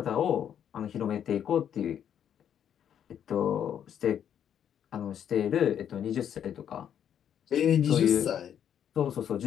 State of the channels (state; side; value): quieter; right; 9.2 dB